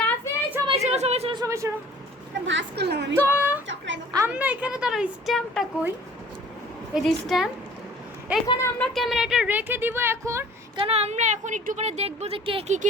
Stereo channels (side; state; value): both; normal; correlation 0.50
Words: রাফি। সবাই শোনো ভাস করলাম আমি। তো চকরাই আমরা এখানে তার স্ট্যাম্পটা কই, এই যে স্ট্যাম্প, এখানে আমরা ক্যামেরাটা রেখে দিব এখন, কারণ আমরা এখন একটু পরে দেখবো যে কে